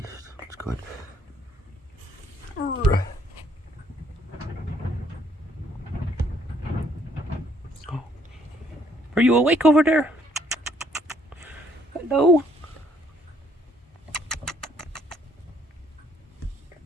That's good. Are you awake over there? Hello?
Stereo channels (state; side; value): normal; both; correlation 0.67